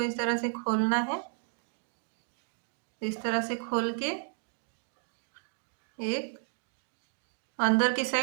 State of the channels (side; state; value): left; silent; 56 dB below the other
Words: इस तरह से खोलना है, इस तरह से खोल के एक अंदर की